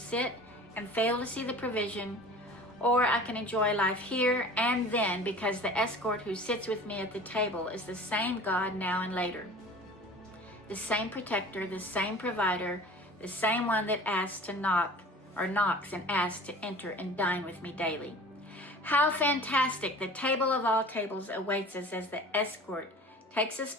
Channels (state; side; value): normal; both; correlation 0.43